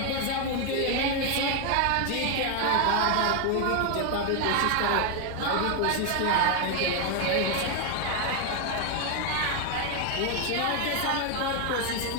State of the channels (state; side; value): different; both; correlation 0.01